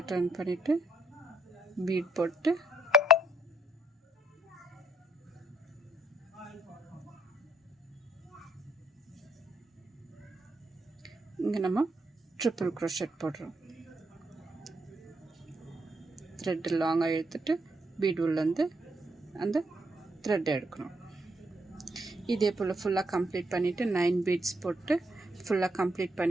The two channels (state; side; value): normal; both; correlation 0.72